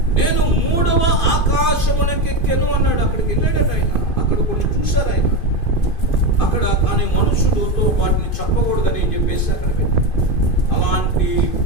నేను 3వ ఆకాశమునకెక్కెను అన్నాడు. అక్కడికి వెళ్ళాడట ఆయన. అక్కడ కొన్ని చూశారు ఆయన అక్కడ. కానీ మనుషులతో వాటిని చెప్పకూడదని చెప్పేసి అక్కడ పెట్టారు. అలాంటి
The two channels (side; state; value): right; late; 2.5 ms